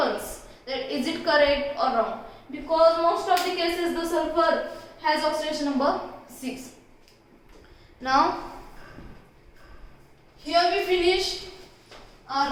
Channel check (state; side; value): identical; both; correlation 1.00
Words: that is it correct or wrong, because most of the cases the sulfur has oxidation number 6. Now here we finish